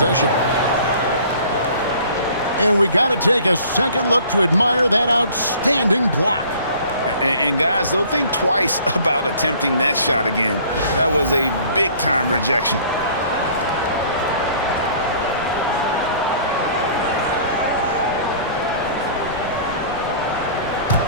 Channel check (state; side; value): inverted; both; correlation -0.51